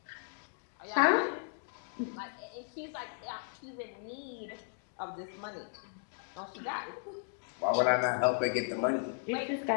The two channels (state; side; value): silent; right; digital silence